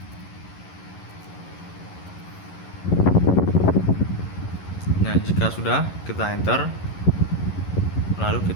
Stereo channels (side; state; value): right; late; 11 ms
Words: Nah, jika sudah, kita enter, lalu